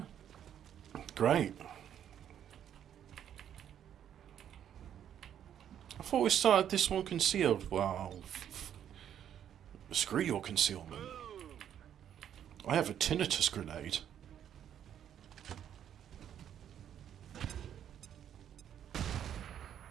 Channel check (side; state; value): left; quieter; 9.8 dB